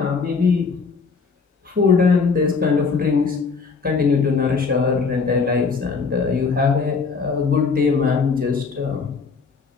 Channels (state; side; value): quieter; right; 5.0 dB